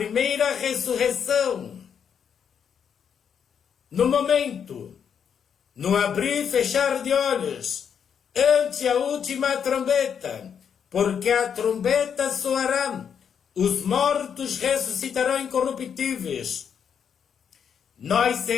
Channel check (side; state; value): right; quieter; 7.6 dB